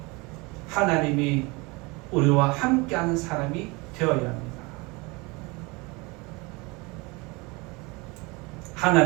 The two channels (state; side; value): quieter; left; 26.2 dB